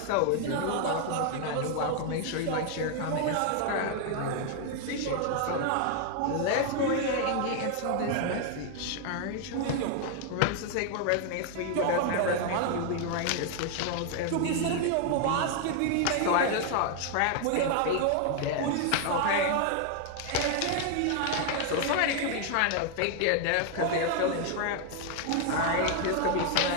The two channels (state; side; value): different; both; correlation 0.00